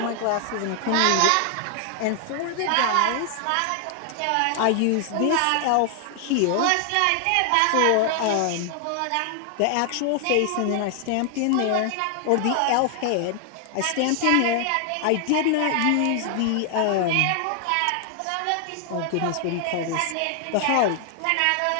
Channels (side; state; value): both; different; correlation 0.00